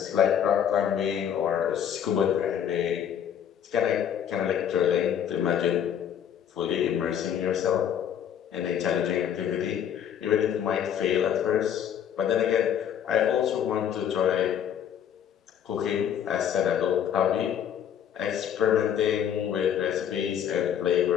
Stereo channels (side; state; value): right; quieter; 9.2 dB